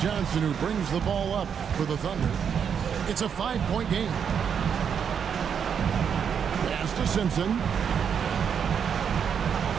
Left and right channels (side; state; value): left; quieter; 7.4 dB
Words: Johnson who brings the ball up for the Thunder. It's a 5-point game. Pass to Simpson.